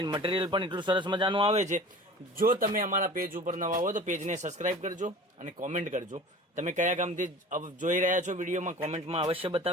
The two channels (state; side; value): normal; both; correlation 0.41